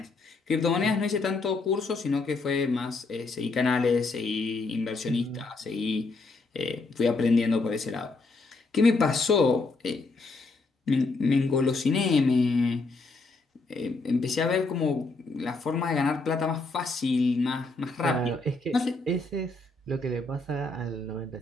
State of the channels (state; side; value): quieter; right; 3.5 dB